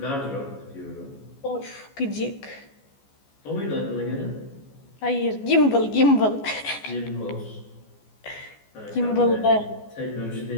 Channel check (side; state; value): right; late; 14 ms